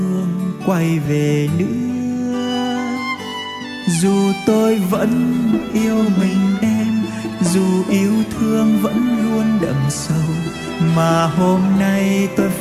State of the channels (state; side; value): identical; both; correlation 1.00